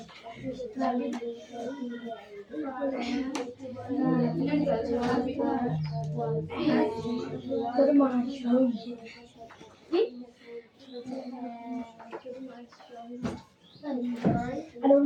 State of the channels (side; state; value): both; identical; correlation 1.00